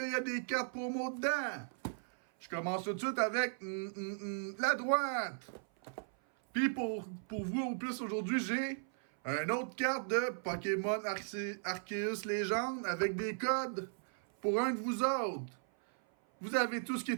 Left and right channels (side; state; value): left; silent; 53 dB below the other